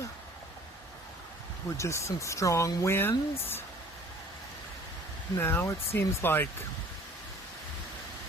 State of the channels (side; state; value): both; normal; correlation 0.51